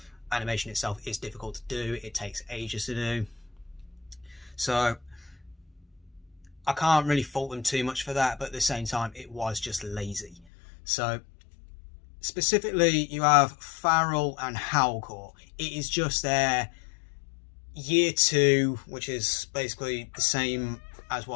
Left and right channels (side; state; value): right; drops out; at 10.5 s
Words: animation itself is difficult to do. It takes ages to do. So I can't really fault them too much for that, but at the same time, it was just lazy. So specifically, you have Farrell and Howlcore. It is just their year 2, which is basically the same as